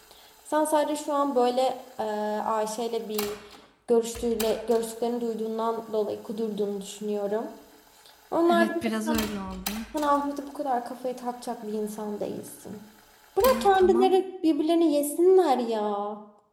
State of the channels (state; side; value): identical; both; correlation 1.00